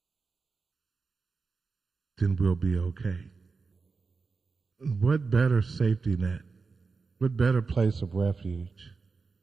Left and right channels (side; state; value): left; quieter; 4.5 dB